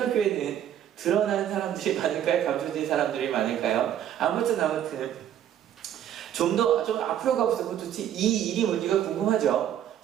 드러난 사람들이 많을까요? 감춰진 사람들이 많을까요? 아무튼 좀 앞으로 가보세요. 도대체 이 일이 뭔지가 궁금하죠?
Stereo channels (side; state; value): left; quieter; 10.5 dB